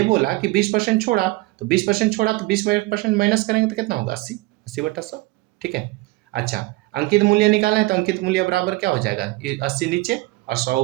बोला कि 20% छोड़ा, तो 20% छोड़ा तो 20% माइनस करेंगे तो कितना होगा? 80, 80 बटा 100। ठीक है, अच्छा, अंकित मूल्य निकालना है तो अंकित मूल्य बराबर क्या हो जाएगा? 80 नीचे और 100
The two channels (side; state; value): left; quieter; 21.1 dB